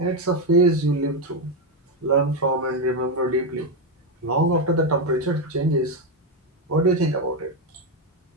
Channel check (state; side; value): normal; both; correlation 0.07